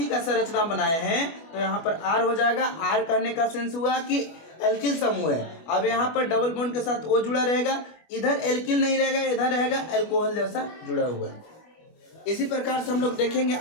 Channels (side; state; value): right; late; 25 ms